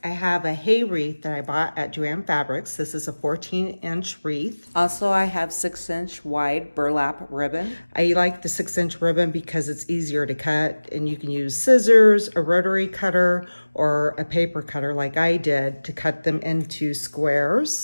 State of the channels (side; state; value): both; inverted; correlation -1.00